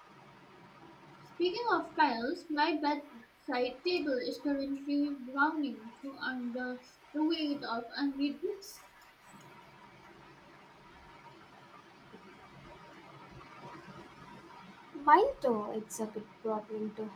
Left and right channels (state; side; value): identical; both; correlation 1.00